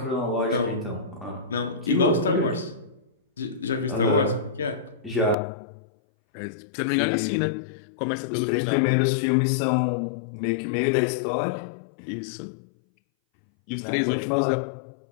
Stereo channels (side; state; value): right; drops out; at 5.4 s